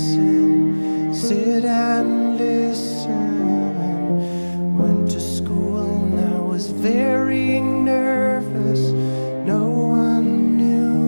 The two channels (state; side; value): inverted; both; correlation -1.00